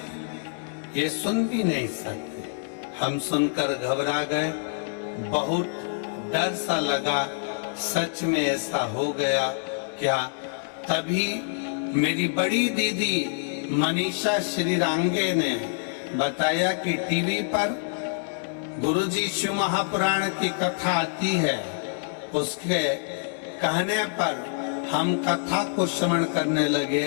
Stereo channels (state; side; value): silent; right; digital silence